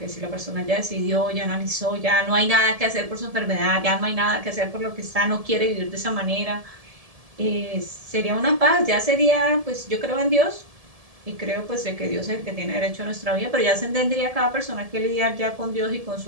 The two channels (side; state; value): left; late; 1.7 ms